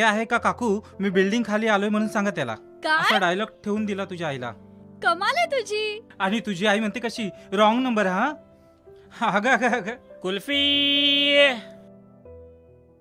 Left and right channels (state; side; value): identical; both; correlation 1.00